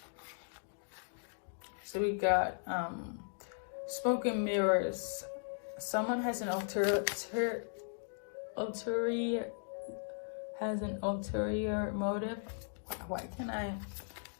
So we got Smoke and Mirrors. Someone has an ulterior motive. Why can I?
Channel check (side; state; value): right; silent; digital silence